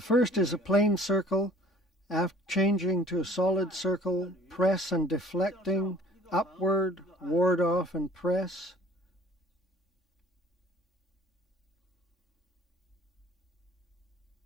first is a plain circle. After changing to a solid circle, press and deflecting, upward, ward off and press.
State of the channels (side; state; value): both; normal; correlation 0.52